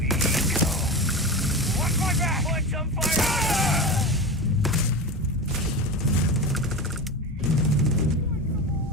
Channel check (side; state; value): both; normal; correlation 0.24